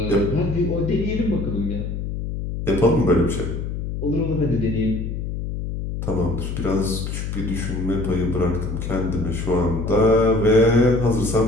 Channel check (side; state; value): left; noise; hum, 4 dB below the sound